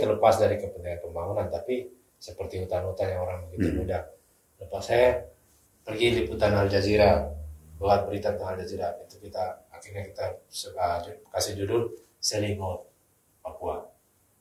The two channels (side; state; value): both; identical; correlation 1.00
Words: dari kepentingan pembangunan, tapi seperti hutan-hutan yang orang begitu mudah. Lepas saya pergi liputan Al Jazeera, buat berita tentang Al Jazeera, itu akhirnya kita kasih judul Selling Out Papua,